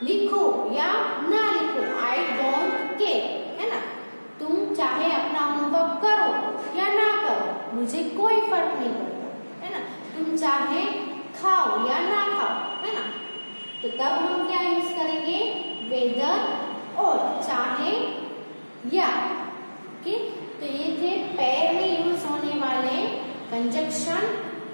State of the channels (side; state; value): both; inverted; correlation -1.00